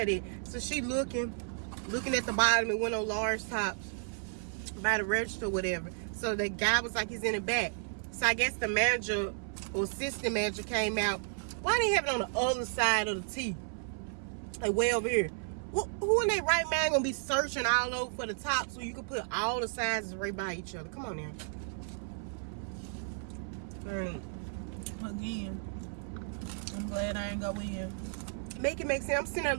at? So she looking at the bottom and went on large tops by the register or whatever. So the guy was like, he's in the back. So I guess the manager or assistant manager came out, why they have it on the other side of the T? Like way over here. Who in their right mind gonna be searching all over for the top so you can put all the sizes right by each other? Come on now. Again, I'm glad I ain't go in. Make it make sense. I'm sitting there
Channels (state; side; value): silent; left; 56 dB below the other